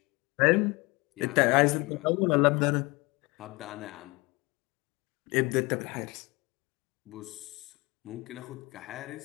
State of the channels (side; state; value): right; quieter; 24.9 dB